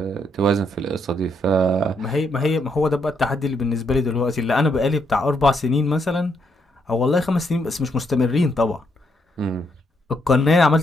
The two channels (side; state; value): both; normal; correlation 0.76